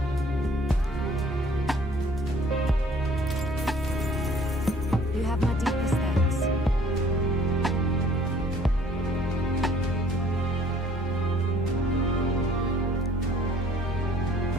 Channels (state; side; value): normal; both; correlation 0.57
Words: You have my deepest thanks.